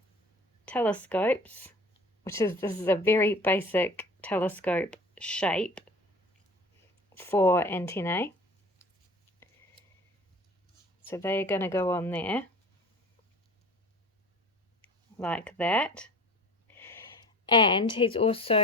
telescopes, this is a very basic telescope shape for antennae. So they're going to go on there like that. And he's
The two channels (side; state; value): both; normal; correlation 0.42